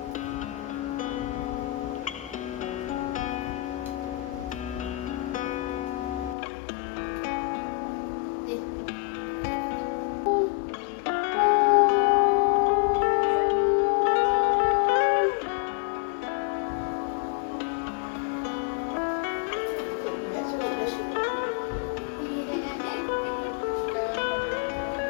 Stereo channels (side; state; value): right; drops out; at 6.4 s